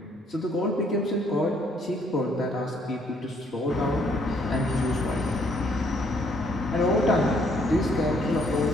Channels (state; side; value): normal; both; correlation 0.67